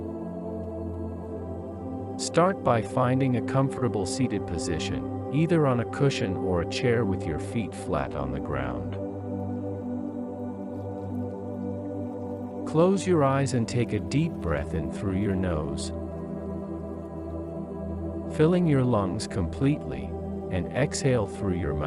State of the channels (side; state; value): both; identical; correlation 1.00